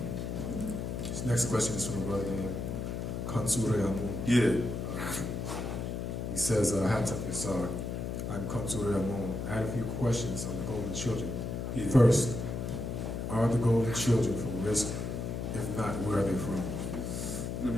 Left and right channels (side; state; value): left; noise; hum, 4 dB below the sound